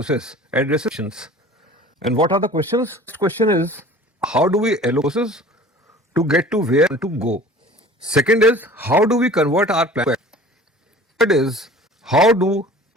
addresses questions. And what are the questions? First question is, how do we allocate resources to get to where to go? Second is, how do we convert our plan? Third is, how do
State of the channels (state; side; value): normal; both; correlation 0.44